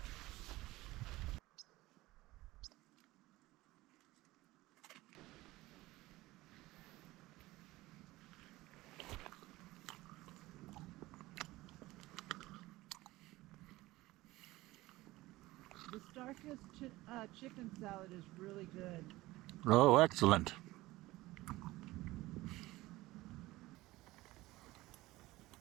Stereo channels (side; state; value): left; quieter; 18.7 dB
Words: The Starkist chicken salad is really good. Oh, excellent.